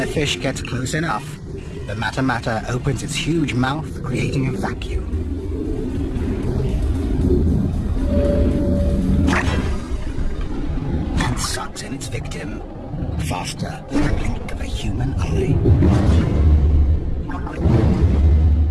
a fish gets close enough, the Mata opens its huge mouth, creating a vacuum. And sucks in its victim faster than the blink of a human eye.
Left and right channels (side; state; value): both; identical; correlation 1.00